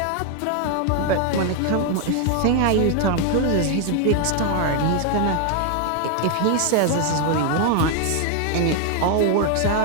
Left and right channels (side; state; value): both; different; correlation 0.00